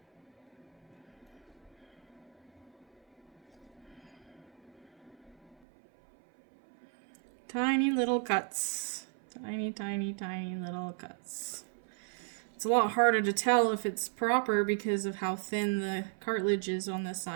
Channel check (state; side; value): drops out; left; at 5.6 s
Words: Tiny little cuts. Tiny, tiny, tiny little cuts. It's a lot harder to tell if it's proper because of how thin the cartilage is on this